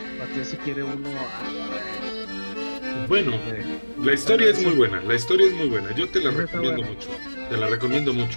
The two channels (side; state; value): both; inverted; correlation -1.00